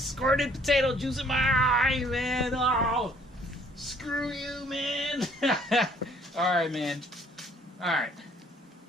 squirted potato juice in my eye, man. Oh, screw you, man. Alright, man. Alright.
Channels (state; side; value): normal; both; correlation 0.60